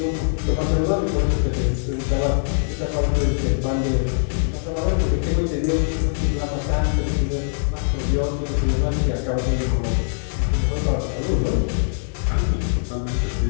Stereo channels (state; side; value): silent; right; digital silence